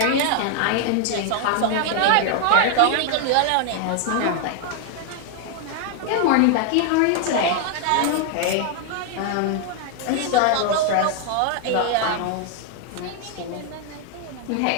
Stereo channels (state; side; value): different; both; correlation 0.00